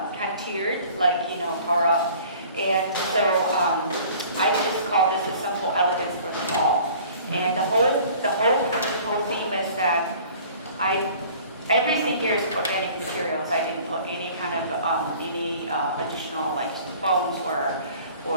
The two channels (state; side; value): inverted; both; correlation -0.49